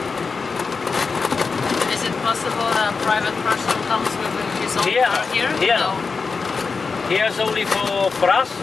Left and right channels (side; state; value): right; quieter; 4.8 dB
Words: Is it possible a private person comes with his own car here? Here. No. Here's only for us,